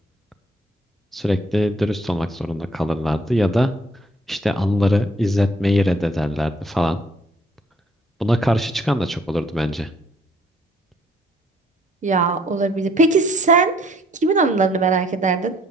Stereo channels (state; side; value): normal; both; correlation 0.63